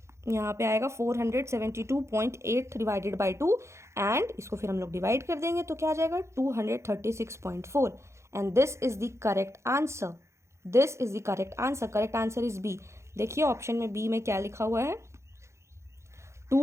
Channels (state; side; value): late; left; 0.14 ms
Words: यहाँ पे आएगा 472.8 डिवाइडेड बाय 2 एंड इसको फिर हम लोग डिवाइड कर देंगे तो क्या आ जाएगा 236.4 and this is the correct answer. This is the correct answer. Correct answer is B. देखिए ऑप्शन में B में क्या लिखा हुआ है,